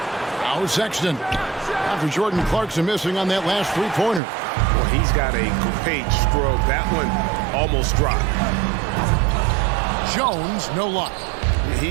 Now Sexton. After Jordan Clarkson missing on that last three-pointer. Well, he's got a great stroke. That one almost dropped. Jones, no luck.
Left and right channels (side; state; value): left; drops out; at 4.2 s